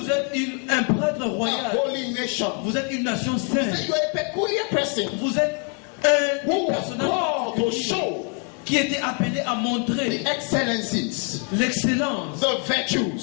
êtes un prêtre a royal. holy nation. Vous êtes une nation He said, sainte. you are a peculiar person Vous êtes un who was personnage called to show qui était appelé à the montrer excellencies, l'excellence. the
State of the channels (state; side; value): quieter; right; 39.7 dB